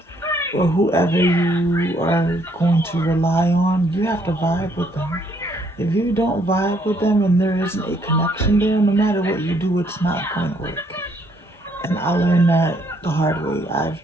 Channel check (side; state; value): both; normal; correlation 0.68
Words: or whoever you are going to rely on, you have to vibe with them. If you don't vibe with them and there isn't a connection there, no matter what you do, it's not going to work. And I learned that the hard way. I've